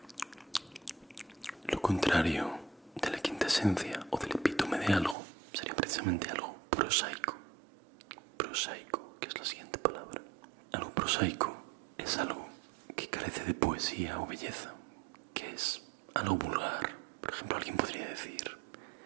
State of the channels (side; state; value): left; drops out; at 5.2 s